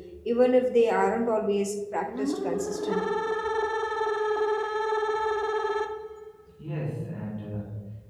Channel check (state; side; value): identical; both; correlation 1.00